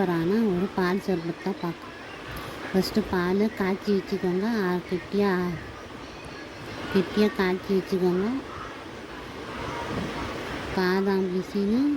ஒரு பால் சர்பத் தான் பார்க்க. ஃபஸ்ட்டு பால் காய்ச்சி வச்சுக்கோங்க. கெட்டியாக காய்ச்சி வச்சுக்கோங்க. பாதாம் பிசின்னு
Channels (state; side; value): identical; both; correlation 1.00